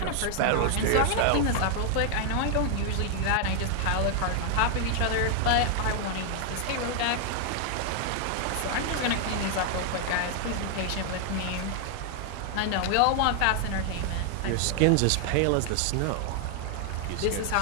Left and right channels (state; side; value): different; both; correlation 0.00